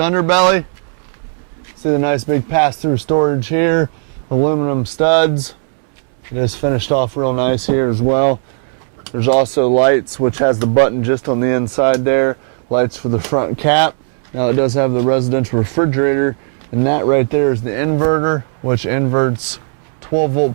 See the nice big pass-through storage here. Aluminum studs. It is finished off real nice here as well. There's also lights, which has the button just on the inside there. Lights for the front cap. Now it does have the residential refrigerator, and that right there is the inverter, which inverts 12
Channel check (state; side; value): silent; left; 61 dB below the other